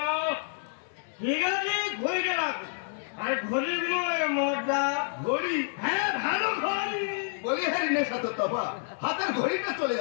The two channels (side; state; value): right; silent; digital silence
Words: ঠিক আছে ঘড়িটা রাখো, আর ঘড়ির বিনিময়ে মদটা ঘড়ি। হ্যাঁ ভালো ঘড়ি। বলি হ্যাঁ নেশা তোর তবা, হাতের ঘড়িটা চলে